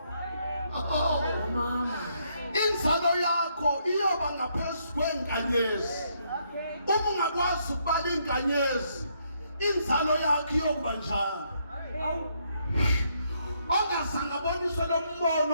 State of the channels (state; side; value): inverted; both; correlation -0.73